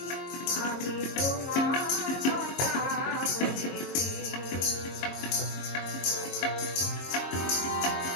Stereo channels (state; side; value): late; right; 22 ms